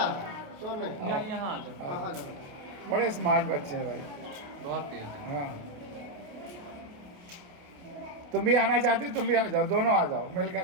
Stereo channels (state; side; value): late; left; 28 ms